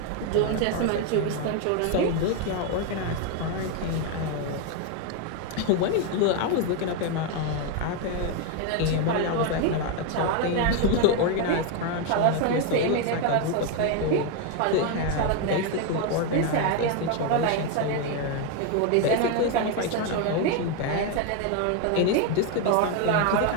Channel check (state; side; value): different; both; correlation 0.01